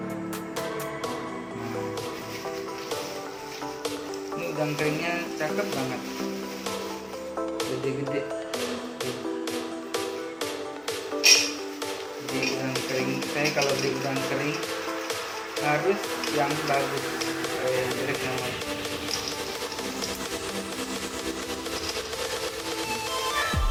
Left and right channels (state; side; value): identical; both; correlation 1.00